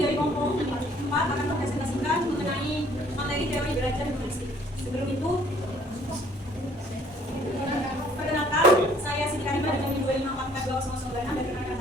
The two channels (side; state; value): both; normal; correlation 0.59